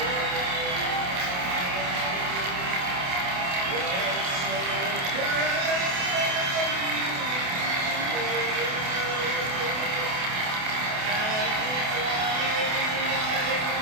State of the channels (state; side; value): late; left; 28 ms